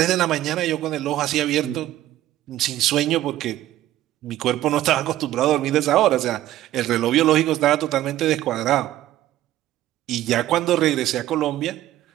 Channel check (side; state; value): left; quieter; 14.0 dB